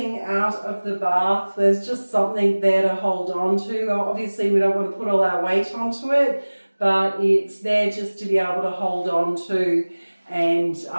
out of the bath. There's just something there to hold on to. Obviously we don't want to put all our weight onto it, but it's there just to be able to hold on to, and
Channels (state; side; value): inverted; both; correlation -1.00